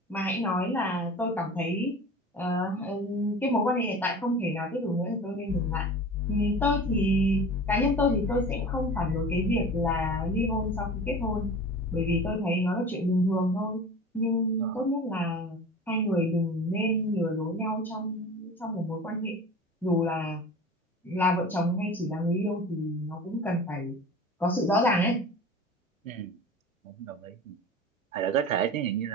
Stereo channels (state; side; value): normal; both; correlation 0.37